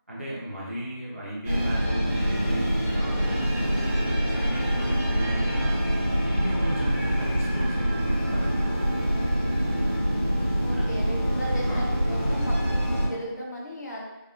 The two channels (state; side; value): inverted; both; correlation -0.93